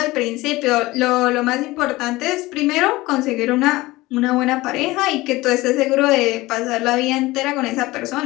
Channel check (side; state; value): right; quieter; 19.6 dB